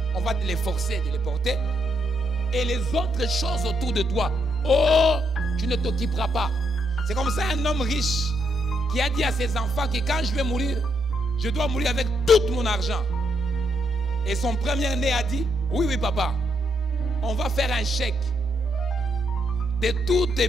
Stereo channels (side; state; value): left; noise; hum, 27 dB below the sound